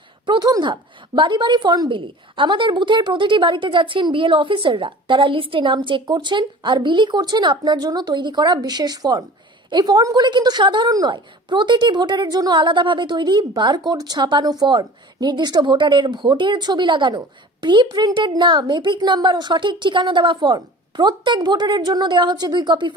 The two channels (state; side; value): normal; both; correlation 0.42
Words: প্রথম ধাপ, বাড়ি বাড়ি ফর্ম বিলি। আমাদের বুথের প্রতিটি বাড়িতে যাচ্ছেন বিএলও অফিসাররা। তারা লিস্টে নাম চেক করছেন আর বিলি করছেন আপনার জন্য তৈরি করা বিশেষ ফর্ম। এই ফর্মগুলি কিন্তু সাধারণ নয়, প্রতিটি ভোটারের জন্য আলাদাভাবে তৈরি বারকোড ছাপানো ফর্ম, নির্দিষ্ট ভোটারের ভোটের ছবি লাগানো, প্রি প্রিন্টেড নাম, এপিক নাম্বার ও সঠিক ঠিকানা দেওয়া ফর্ম। প্রত্যেক ভোটারের জন্য দেওয়া হচ্ছে 2 কপি